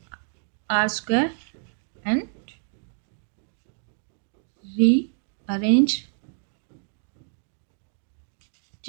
r square and rearrange.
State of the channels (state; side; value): silent; left; digital silence